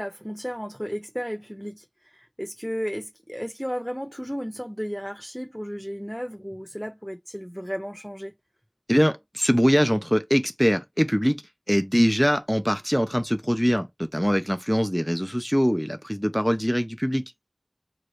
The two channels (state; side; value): identical; both; correlation 1.00